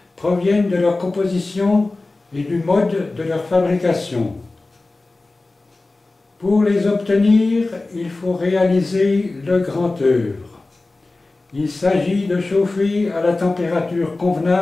proviennent de leur composition et du mode de leur fabrication. Pour les obtenir, il faut réaliser le grand œuvre. Il s'agit de chauffer à la température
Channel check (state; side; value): quieter; right; 3.2 dB